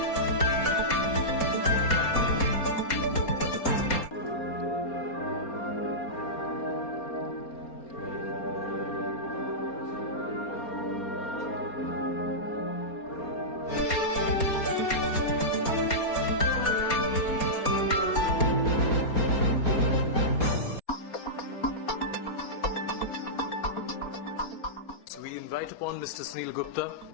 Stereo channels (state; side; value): late; right; 4.3 ms